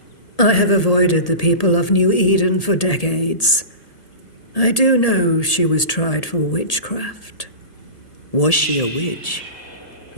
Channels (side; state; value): right; late; 1.8 ms